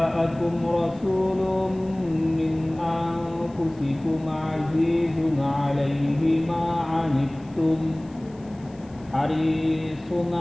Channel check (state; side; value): noise; left; hiss, 29 dB below the sound